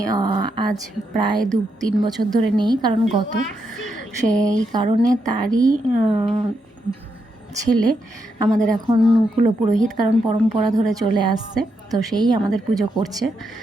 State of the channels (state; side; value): normal; both; correlation 0.82